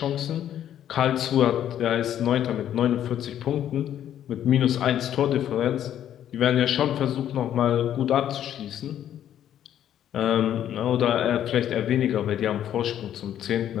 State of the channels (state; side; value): quieter; right; 10.7 dB